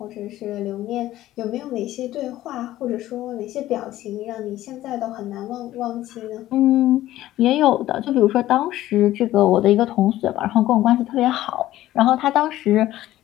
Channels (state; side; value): quieter; right; 14.6 dB